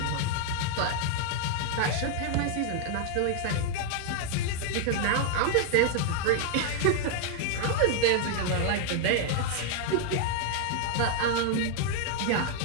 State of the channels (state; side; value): different; both; correlation 0.00